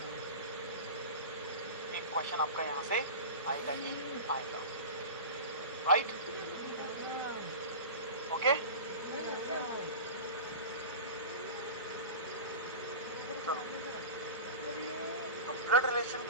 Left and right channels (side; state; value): both; inverted; correlation -0.30